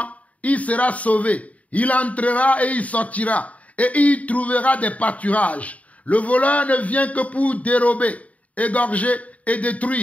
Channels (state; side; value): late; right; 0.069 ms